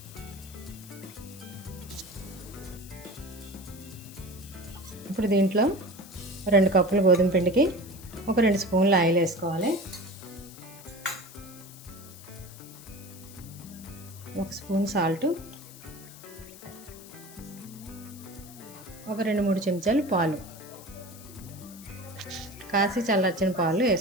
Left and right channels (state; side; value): noise; left; hiss, 18 dB below the sound